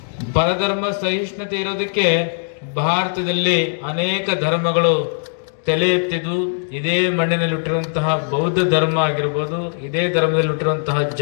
ಪರಧರ್ಮ ಸಹಿಷ್ಣುತೆ ಇರೋದಕ್ಕೆ ಭಾರತದಲ್ಲಿ ಅನೇಕ ಧರ್ಮಗಳು ತಲೆ ಎತ್ತಿದ್ದು. ಇದೇ ಮಣ್ಣಿನಲ್ಲಿ ಹುಟ್ಟಿರುವಂತಹ ಬೌದ್ಧ ಧರ್ಮ ಆಗಿರ್ಬೋದು, ಇದೇ ಧರ್ಮದಲ್ಲಿ ಹುಟ್ಟಿರುವಂತಹ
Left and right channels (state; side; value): silent; right; digital silence